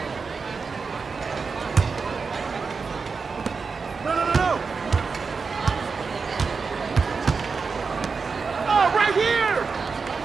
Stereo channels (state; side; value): quieter; left; 4.9 dB